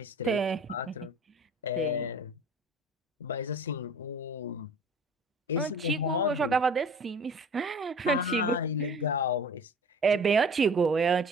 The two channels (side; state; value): both; normal; correlation 0.42